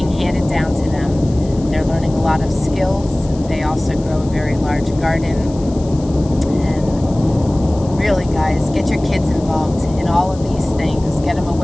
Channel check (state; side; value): noise; left; hiss, 22 dB below the sound